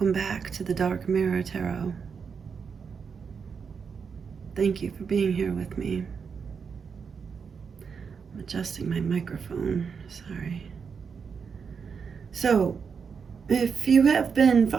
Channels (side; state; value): left; quieter; 6.1 dB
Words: back to the Dark Mirror Tarot. Thank you for being here with me. I'm adjusting my microphone. Sorry. So, if you have been